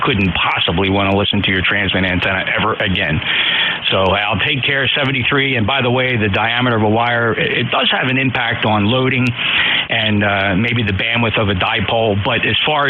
couldn't possibly want to listen to your transmit antenna ever again. So I'll take care of 73. And by the way, the diameter of a wire, it does have an impact on loading and maybe the bandwidth of a dipole. But as far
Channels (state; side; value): identical; both; correlation 1.00